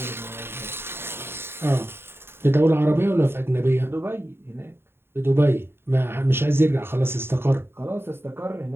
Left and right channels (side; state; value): left; late; 0.11 ms